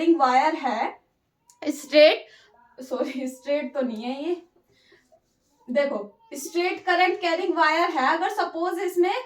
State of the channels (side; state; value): both; identical; correlation 1.00